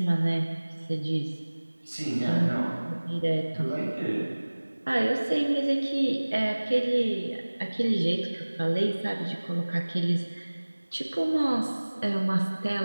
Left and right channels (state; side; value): inverted; both; correlation -1.00